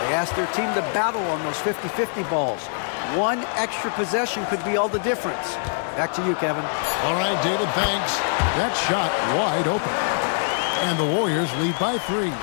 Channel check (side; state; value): right; silent; digital silence